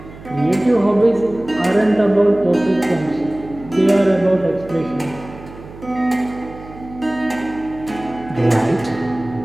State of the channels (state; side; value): noise; right; hum, 17 dB below the sound